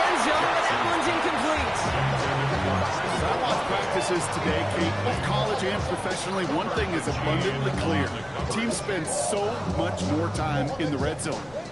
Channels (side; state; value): left; noise; rumble, 25 dB below the sound